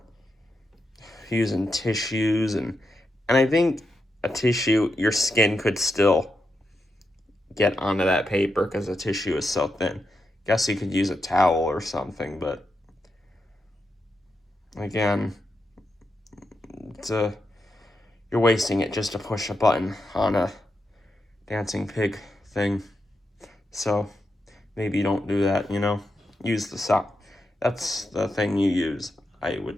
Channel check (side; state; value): both; normal; correlation 0.86